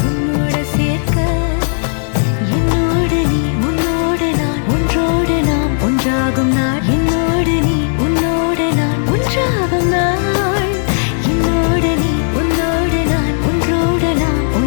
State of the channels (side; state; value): right; silent; digital silence